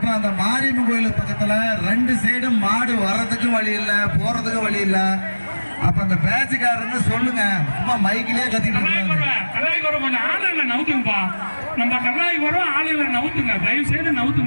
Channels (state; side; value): inverted; both; correlation -1.00